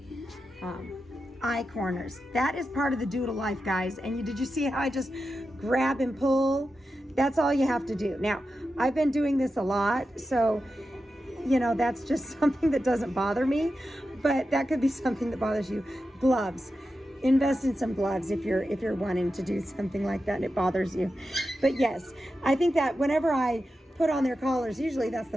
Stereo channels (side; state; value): both; normal; correlation 0.90